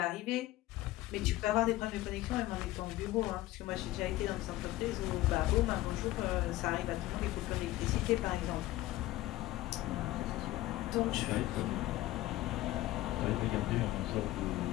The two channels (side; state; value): right; quieter; 16.7 dB